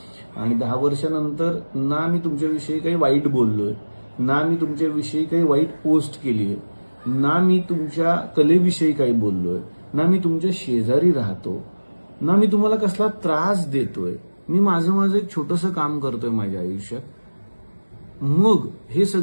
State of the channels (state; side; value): inverted; both; correlation -1.00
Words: आणि 10 वर्षानंतर ना मी तुमच्याविषयी काही वाईट बोललोय, ना मी तुमच्याविषयी काही वाईट पोस्ट केली आहे, ना मी तुमच्या कलेविषयी काही बोललोय, ना मी तुमच्या शेजारी राहतो, ना मी तुम्हाला कसला त्रास देतोय. मी माझं एक छोटंसं काम करतोय माझ्या आयुष्यात. मग हे